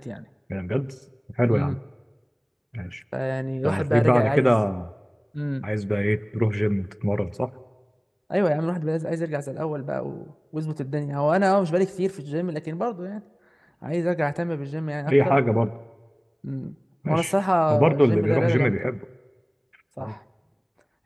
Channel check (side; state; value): both; identical; correlation 1.00